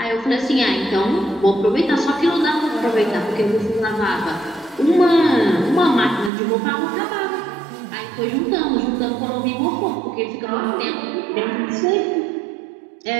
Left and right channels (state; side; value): drops out; left; at 6.3 s